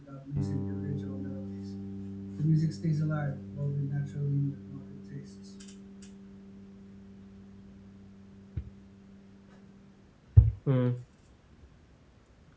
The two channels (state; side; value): identical; both; correlation 1.00